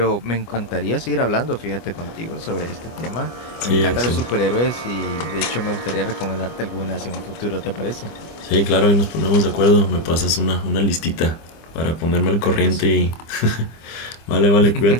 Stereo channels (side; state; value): right; late; 25 ms